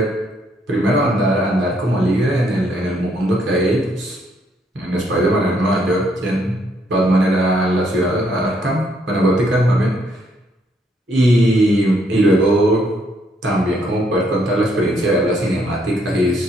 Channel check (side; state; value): both; normal; correlation 0.71